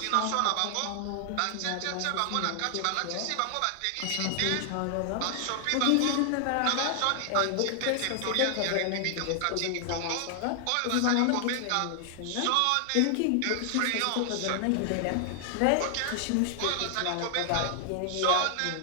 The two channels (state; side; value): different; both; correlation 0.00